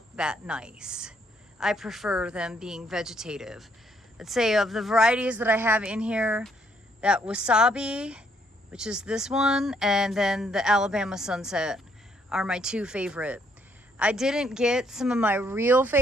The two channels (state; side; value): normal; both; correlation 0.69